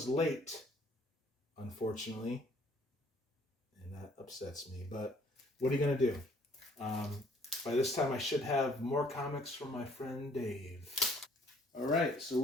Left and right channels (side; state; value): both; normal; correlation 0.61